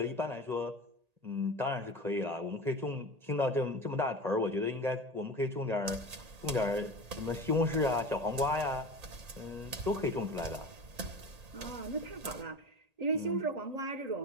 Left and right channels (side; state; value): left; late; 1.8 ms